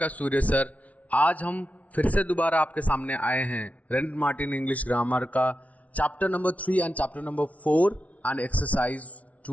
सूर्य सर। आज हम फिर से दोबारा आपके सामने आए हैं रेनेट मार्टिन इंग्लिश ग्रामर का chapter number 3 and chapter number 4 and exercise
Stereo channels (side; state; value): right; late; 0.068 ms